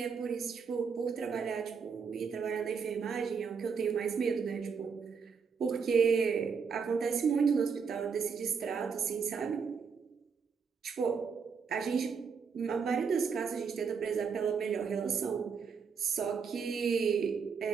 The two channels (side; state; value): left; quieter; 6.0 dB